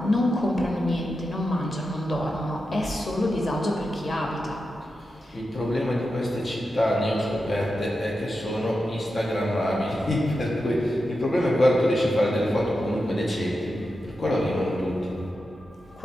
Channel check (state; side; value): normal; both; correlation 0.89